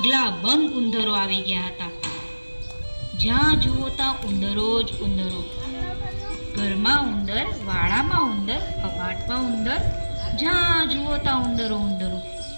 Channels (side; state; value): both; inverted; correlation -1.00